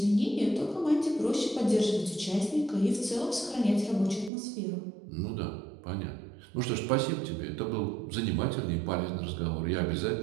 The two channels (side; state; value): left; drops out; at 4.3 s